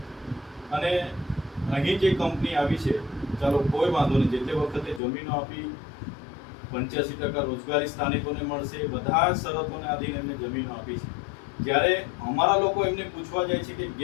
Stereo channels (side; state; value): right; drops out; at 5.0 s